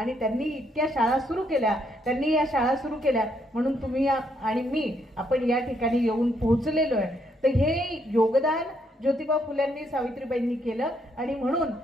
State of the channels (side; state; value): both; normal; correlation 0.74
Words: त्यांनी इतक्या शाळा सुरू केल्या. त्यांनी या शाळा सुरू केल्या म्हणून तुम्ही आणि मी आपण या ठिकाणी येऊन पोहोचलेलो आहे. तर हे योगदान ज्योतिबा फुल्यांनी सावित्रीबाईंनी केलं आणि म्हणून